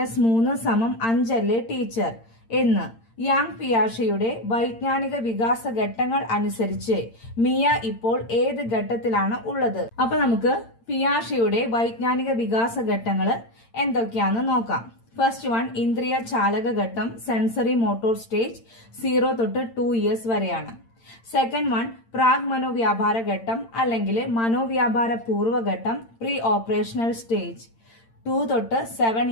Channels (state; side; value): late; right; 8.8 ms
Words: അല്ലേ ടീച്ചർ എന്ന്. യാങ് പിയാഷയുടെ വൈജ്ഞാനിക വികാസ ഘട്ടങ്ങൾ അനുസരിച്ച് മിയ ഇപ്പോൾ ഏത് ഘട്ടത്തിലാണ് ഉള്ളത്? അപ്പൊ നമുക്ക് പിയാഷയുടെ വൈജ്ഞാനിക വികാസ ഘട്ടങ്ങൾ എന്തൊക്കെയാണെന്ന് നോക്കാം. ഫസ്റ്റ് വൺ, ഇന്ദ്രിയ ചാലക ഘട്ടം, സെൻസറി മോട്ടോർ സ്റ്റേജ് 0 തൊട്ട് 2 years വരെയാണ്. സെക്കൻഡ് വൺ, പ്രാഗ് മനോവ്യാപാര ഘട്ടം അല്ലെങ്കിൽ മനോവ്യാപാര പൂർവ്വഘട്ടം, പ്രീ ഓപ്പറേഷണൽ സ്റ്റേജ് 2 തൊട്ട് 7